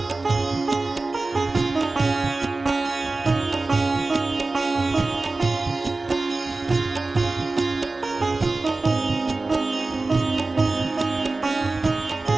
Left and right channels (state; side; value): quieter; left; 3.3 dB